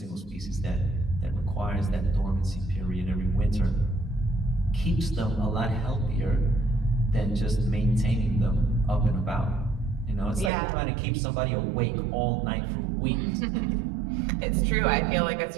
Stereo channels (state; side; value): drops out; left; at 10.5 s